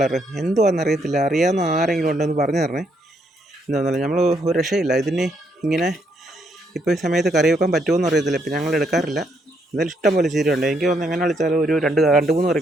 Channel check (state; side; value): normal; both; correlation 0.74